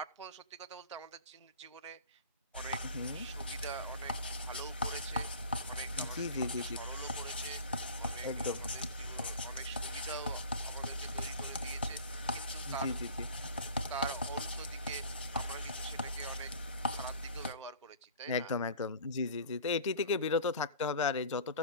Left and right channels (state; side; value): inverted; both; correlation -0.41